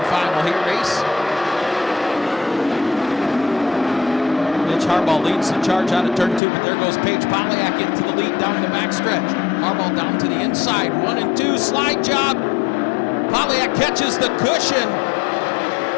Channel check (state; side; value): drops out; right; at 6.4 s